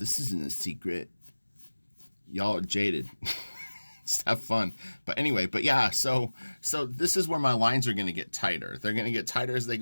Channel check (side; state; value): both; inverted; correlation -1.00